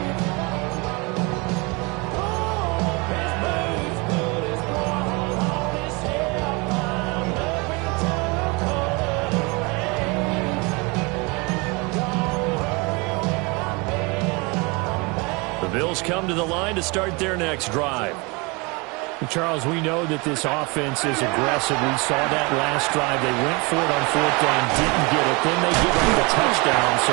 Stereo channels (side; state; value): left; quieter; 27.9 dB